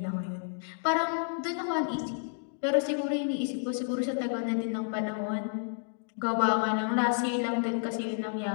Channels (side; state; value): right; silent; 57 dB below the other